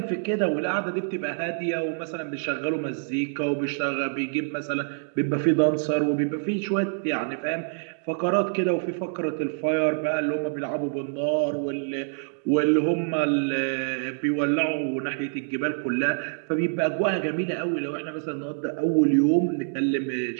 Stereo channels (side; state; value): left; silent; digital silence